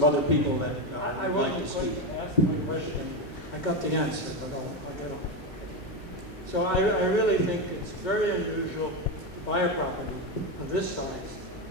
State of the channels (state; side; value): normal; both; correlation 0.12